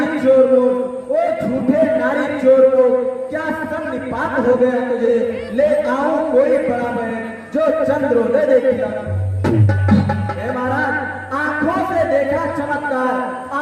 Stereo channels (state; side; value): identical; both; correlation 1.00